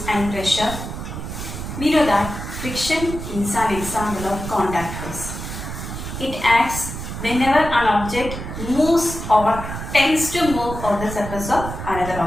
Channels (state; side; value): noise; right; rumble, 7 dB below the sound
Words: and pressure. We know that friction is an example of contact force. It acts whenever an object moves or tends to move on the surface of another